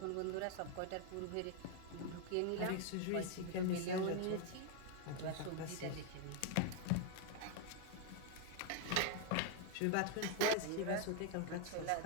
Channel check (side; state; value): both; different; correlation 0.01